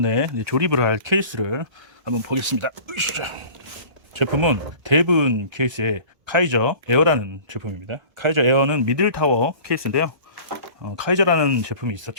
조립을 할 케이스를 한번 보겠습니다. 제품은 대분 케이스에 카이저 에어라는 제품입니다. 카이저 에어는 미들타워 케이스인데요. 카이저라는 제품이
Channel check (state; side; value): late; left; 1.4 ms